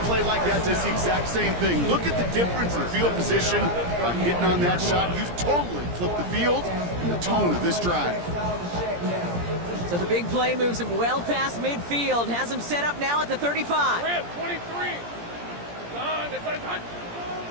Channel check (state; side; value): late; left; 17 ms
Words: play like that does the exact same thing. Look at the difference in field position by hitting on that shot. You've totally flipped the field and the tone of this drive. So the big play moves him well past midfield. Has him set up now at the 35. 23.